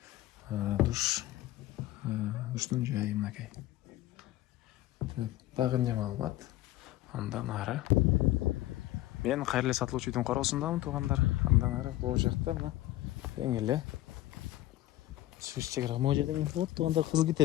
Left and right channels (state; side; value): quieter; right; 15.7 dB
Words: душтун жайы мынакей. Дагы эмне маалымат? Андан ары мен кайрылы сатылуучу үйдүн короосундамын туугандар. Андан ары бул жакта мына эң эле чек ара могу жерден болот туугандар. Кызыл